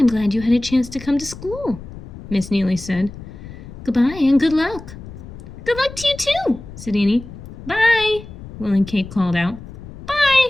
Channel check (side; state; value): left; noise; rumble, 14 dB below the sound